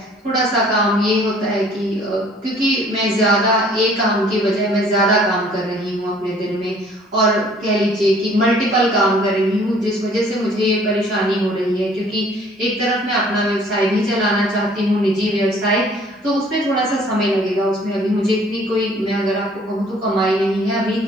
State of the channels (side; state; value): both; normal; correlation 0.56